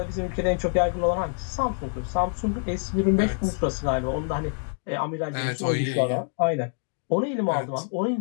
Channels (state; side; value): silent; right; digital silence